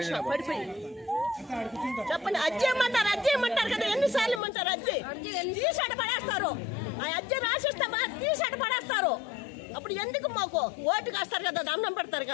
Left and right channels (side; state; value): right; drops out; at 4.4 s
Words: పడిపోయింది. చెప్పండి. అజ్జి ఇమ్మంటారు కదా, ఎన్నిసార్లు ఇమ్మంటారు? అజ్జి తీసాట పడేస్తారు. ఆ అజ్జి రాసిస్తామా తీసాట పడేస్తారు. అప్పుడు ఎందుకు మాకు ఓటు కాస్తారు కదా, దండం పెడతారు